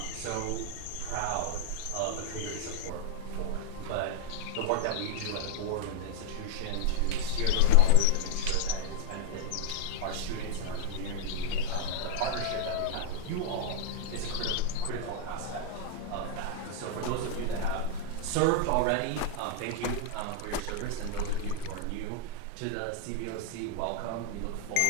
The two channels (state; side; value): different; both; correlation -0.01